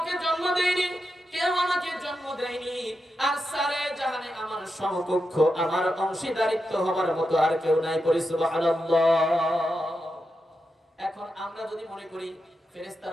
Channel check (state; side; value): normal; both; correlation 0.87